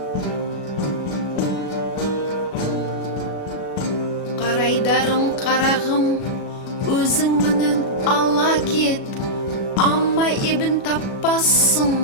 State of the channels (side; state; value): right; late; 37 ms